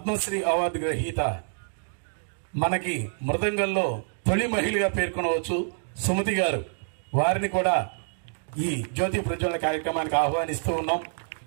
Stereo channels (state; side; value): silent; left; digital silence